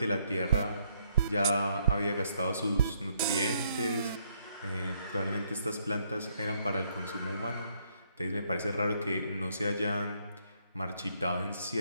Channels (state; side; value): inverted; both; correlation -0.71